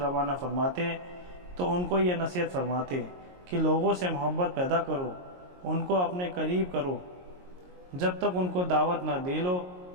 فرماتے تو ان کو یہ نصیحت فرماتے کہ لوگوں سے محبت پیدا کرو، ان کو اپنے قریب کرو، جب تک ان کو دعوت نہ دے لو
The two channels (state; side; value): late; left; 22 ms